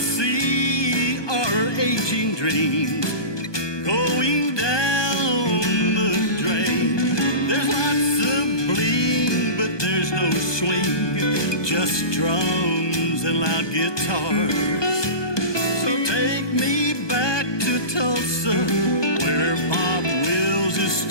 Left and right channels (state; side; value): late; right; 1.2 ms